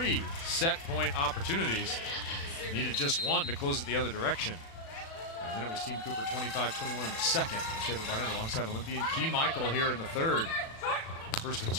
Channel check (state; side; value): late; right; 36 ms